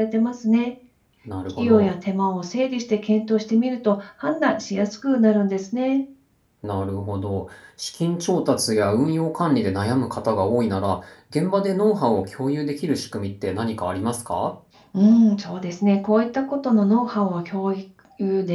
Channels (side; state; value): both; identical; correlation 1.00